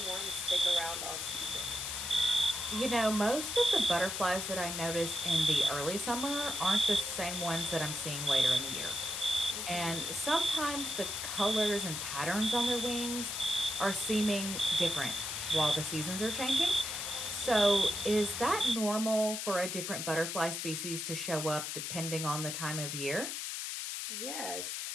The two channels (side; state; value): left; noise; hiss, 4 dB below the sound